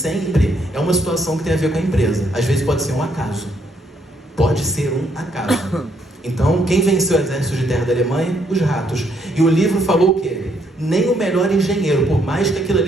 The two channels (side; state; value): both; normal; correlation 0.72